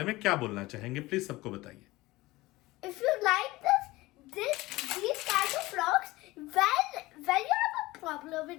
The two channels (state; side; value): quieter; right; 19.7 dB